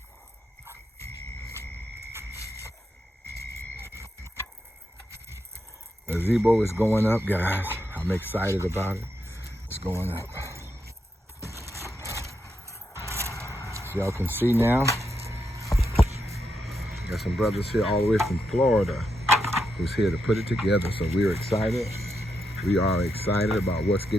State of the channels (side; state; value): both; normal; correlation 0.83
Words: The gazebo is going up, guys. I'm excited about it. It's going up. As y'all can see now, got some brothers here all the way from Florida who's here to put it together. So we're excited. We are excited about what's